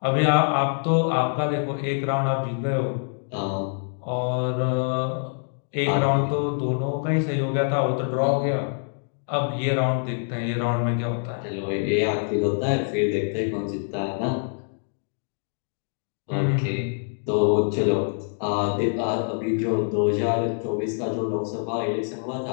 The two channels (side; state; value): right; silent; digital silence